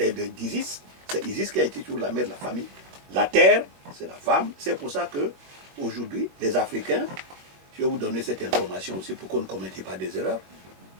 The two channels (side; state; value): left; late; 22 ms